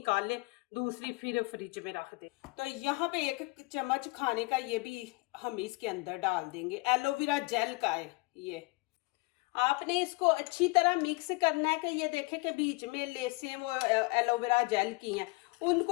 ले, दूसरी फिर फ्रिज में रख दे। तो यहाँ पे 1 चम्मच खाने का ये भी हम इसके अंदर डाल देंगे। एलोवेरा जेल का है ये। आपने इसको अच्छी तरह मिक्स करना है कि ये देखें कि बीच में लेसें वो एलोवेरा जेल की हैं,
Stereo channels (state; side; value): quieter; right; 25.9 dB